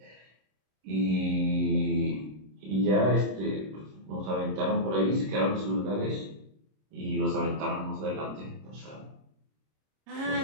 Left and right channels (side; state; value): left; late; 26 ms